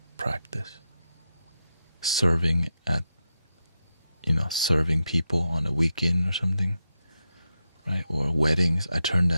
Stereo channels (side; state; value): both; inverted; correlation -0.86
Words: practice. Serving serving people on a weekend or something, right? Or weddings, I turned